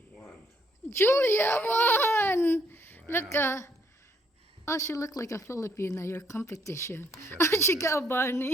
1. Julia won! Wow. Look, oh, she looked like a Filipina, your competition. Except Oh, she got a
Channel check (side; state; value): both; normal; correlation 0.69